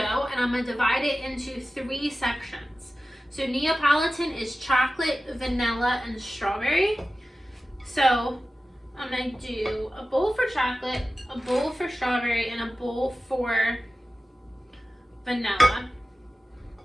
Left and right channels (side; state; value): both; normal; correlation 0.95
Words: and I'm going to divide it into 3 sections. So Neapolitan is chocolate, vanilla, and strawberry. So I'm going to do a bowl for chocolate, a bowl for strawberry, and a bowl for vanilla.